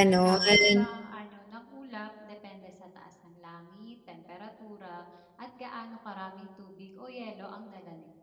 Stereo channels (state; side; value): identical; both; correlation 1.00